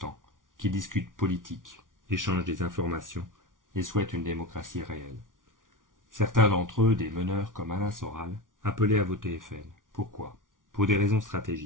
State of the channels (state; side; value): late; left; 0.88 ms